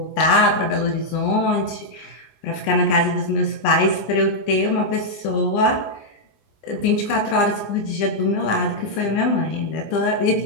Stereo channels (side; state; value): right; late; 20 ms